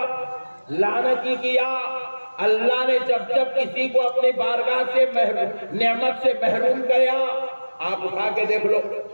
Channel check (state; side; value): inverted; both; correlation -1.00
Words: لعنتی کیا, اللہ نے جب جب کسی کو اپنی بارگاہ سے نعمت سے محروم کیا, آپ اٹھا کے دیکھ لو.